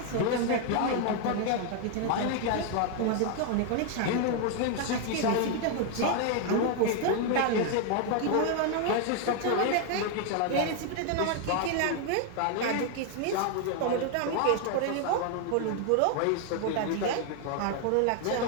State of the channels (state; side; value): different; both; correlation 0.00